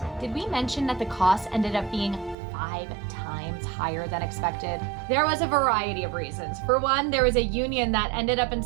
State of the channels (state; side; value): drops out; left; at 2.4 s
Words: Did we mention that the cost ended up being 5 times higher than expected? There was a variety of reasons. For one, there was a union that ended up